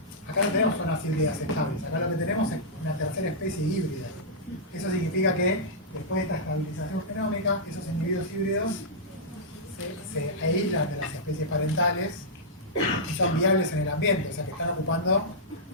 acá no tenemos zonas híbridas estables, acá lo que tenemos es una tercera especie híbrida. Eso significa que después de esta estabilización genómica, esos individuos híbridos se aíslan de las especies parentales y son viables en el ambiente, o sea que están ocupando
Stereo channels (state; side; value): normal; both; correlation -0.12